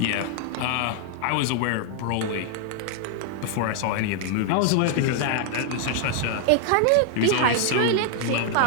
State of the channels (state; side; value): different; both; correlation 0.00